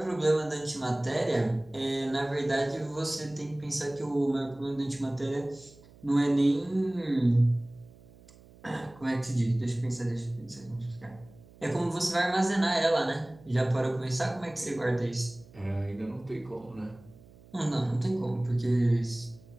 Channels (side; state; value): right; noise; hum, 24 dB below the sound